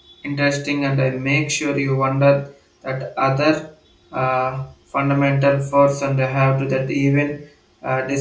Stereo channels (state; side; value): identical; both; correlation 1.00